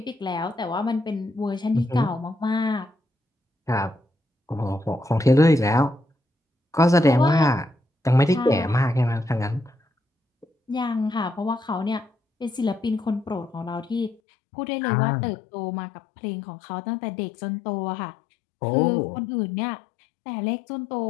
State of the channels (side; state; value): right; drops out; at 14.2 s